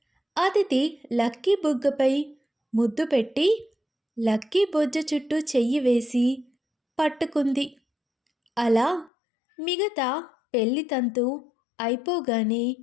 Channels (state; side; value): drops out; right; at 9.1 s